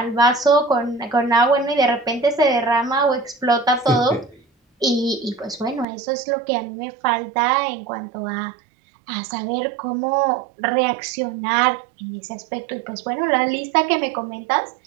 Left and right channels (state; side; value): drops out; left; at 5.9 s